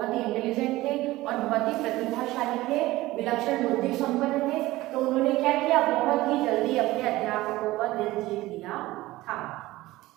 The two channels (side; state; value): left; quieter; 18.0 dB